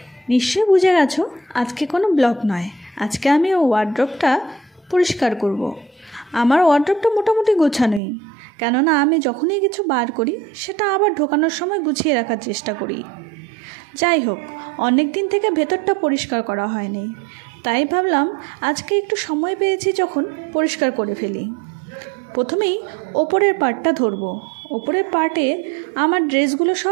নিশ্চয়ই বুঝে গেছো আজকে কোনো ব্লগ নয়। আজকে আমি ওয়ার্ড্রপটা পরিষ্কার করব। আমার ওয়ার্ড্রপটা মোটামুটি গোছানোই, কেননা আমি যখনই কিছু বার করি সেটা আবার ঢোকানোর সময় গুছিয়ে রাখার চেষ্টা করি। যাই হোক, অনেক দিন থেকে ভেতরটা পরিষ্কার করা হয়নি, তাই ভাবলাম আজকে একটু সময় পেয়েছি যখন পরিষ্কার করে ফেলি। প্রথমেই ওপরের পার্টটা ধরবো। ওপরের পার্টে আমার ড্রেসগুলো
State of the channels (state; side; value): drops out; left; at 8.0 s